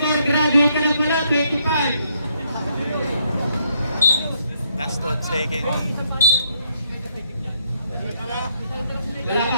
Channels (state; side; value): inverted; both; correlation -0.73